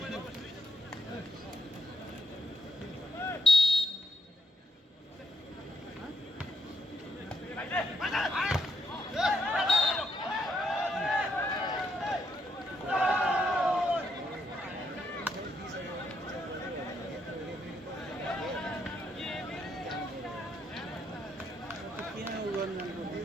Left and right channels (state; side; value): normal; both; correlation 0.77